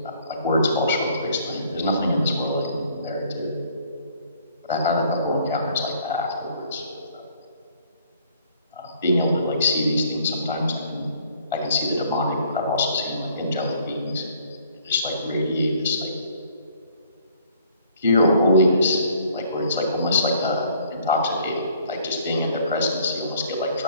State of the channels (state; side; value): inverted; both; correlation -0.60